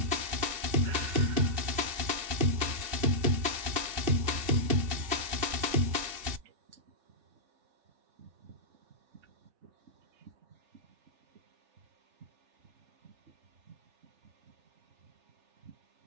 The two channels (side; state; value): left; late; 2.7 ms